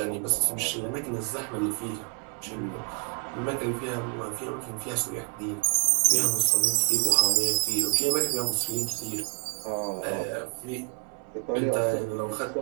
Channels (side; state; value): left; quieter; 36.9 dB